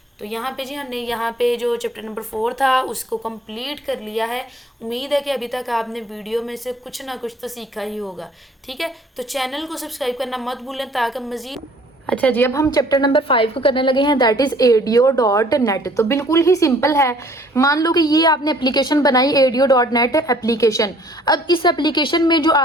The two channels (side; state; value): both; normal; correlation 0.56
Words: तो यहाँ पे जी हमने यहाँ पे जो चैप्टर नंबर 4 था उसको कंप्लीट कर लिया है। उम्मीद है कि अभी तक आपने वीडियो में से कुछ ना कुछ तो सीखा ही होगा। ठीक है, तो चैनल को सब्सक्राइब करना मत भूलें ताकि मज़ीद। अच्छा जी, अब हम चैप्टर नंबर 5 को करने लगे हैं, दैट इज़ ADO.NET। तो बिल्कुल ही सिंपल है। मान लो कि ये आपने एप्लीकेशन बनाई ADO.NET एप्लीकेशन। अब इस एप्लीकेशन में जो